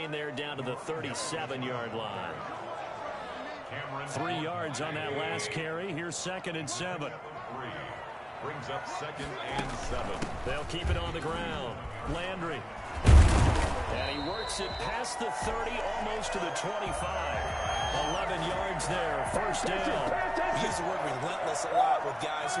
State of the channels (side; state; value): both; identical; correlation 1.00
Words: there down to the 37-yard line. 3 yards on that last carry. Here's 2nd and 7. Brings up 2nd and 7. They'll keep it on the ground. Landry. And he works it past the 30, almost to the 25. 11 yards there. First down. We use the word relentless a lot with guys